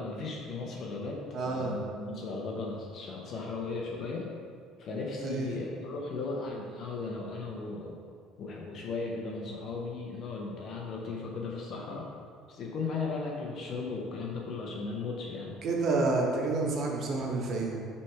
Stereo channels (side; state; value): both; normal; correlation 0.52